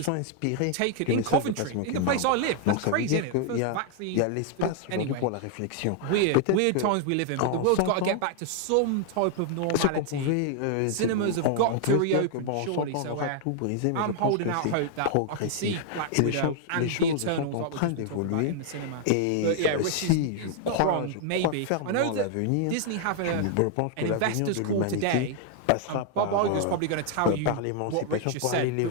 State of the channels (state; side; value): different; both; correlation 0.00